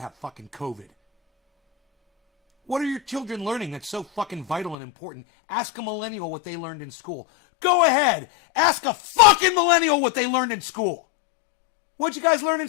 fucking COVID. What are your children learning that's so fucking vital and important? Ask a millennial what they learned in school. Go ahead. Ask a fucking millennial what they learned in school. What'd you guys learn in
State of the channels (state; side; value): drops out; right; at 4.8 s